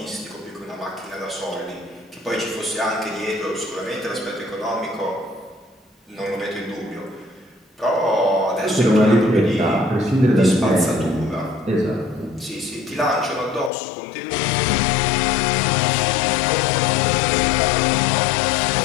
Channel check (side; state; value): right; drops out; at 13.7 s